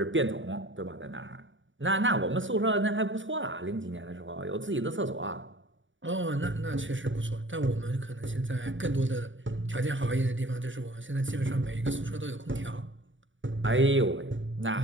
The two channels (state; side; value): late; left; 0.56 ms